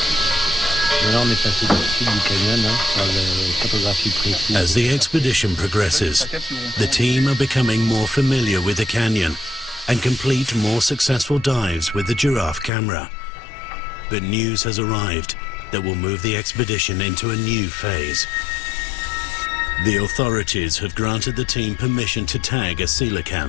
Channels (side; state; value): right; drops out; at 12.7 s